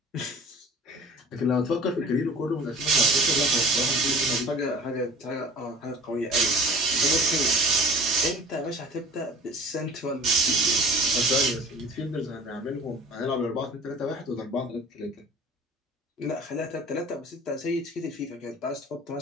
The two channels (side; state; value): both; normal; correlation 0.44